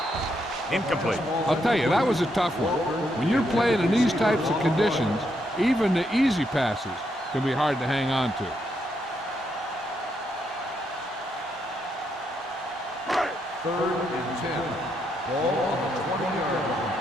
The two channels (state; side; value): normal; both; correlation 0.78